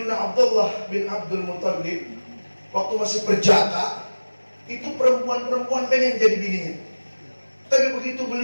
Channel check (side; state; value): both; inverted; correlation -1.00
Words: Abdullah bin Abdul Muttalib waktu masih perjaka, itu perempuan-perempuan pengen jadi bininya. Tapi begitu